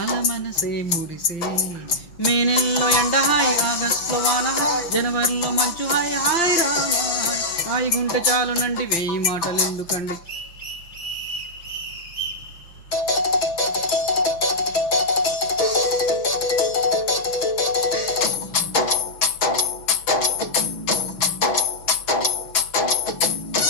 మనసే మురిసే మే నెలలో ఎండ హాయ్ ఆగస్టులో వాన హాయ్ జనవరిలో మంచు హాయ్ హాయ్ రామ హాయ్ గుంట చాలునండి వెయ్యి మాటలు ఎందుకండి.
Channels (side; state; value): right; late; 6.1 ms